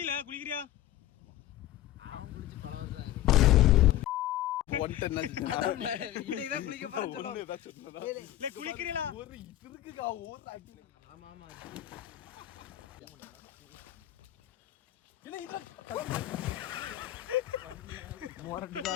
குளிக்கிறியா? அவன் குளிச்சு பல வருஷம் ஆயிரும். குளிக்கிறீங்களா? ஆமா ஆமா மொரட்டு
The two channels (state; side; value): quieter; right; 13.5 dB